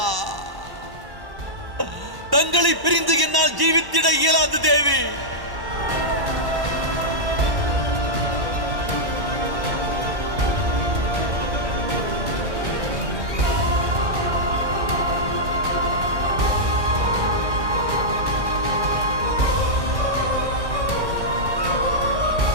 தங்களை பிரிந்து என்னால் ஜீவித்திட இயலாது தேவி.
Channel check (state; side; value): late; left; 1.1 ms